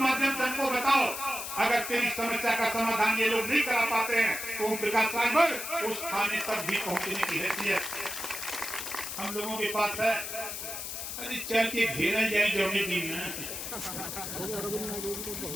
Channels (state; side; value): noise; left; hiss, 6 dB below the sound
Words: से हमको बताओ। अगर तेरी समस्या का समाधान ये लोग नहीं करा पाते हैं तो ओम प्रकाश राजभर उस थाने तक भी पहुंचने की हैसियत हम लोगों के पास है। अरे चल के घेरा जाए जौने दिन